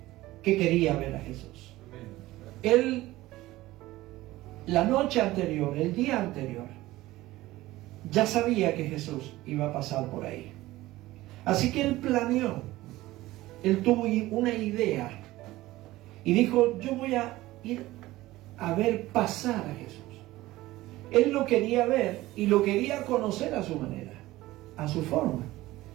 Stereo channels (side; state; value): left; quieter; 17.5 dB